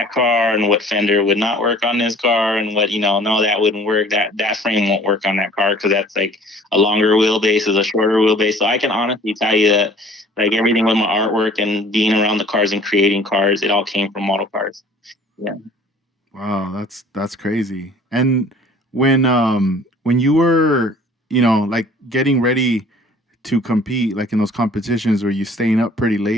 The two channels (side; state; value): both; normal; correlation 0.51